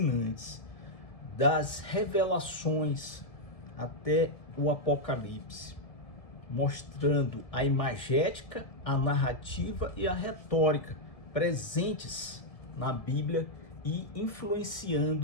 das revelações até o Apocalipse, mostrando a imagética, a narrativa e a retórica presentes na Bíblia e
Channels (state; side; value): late; right; 1.7 ms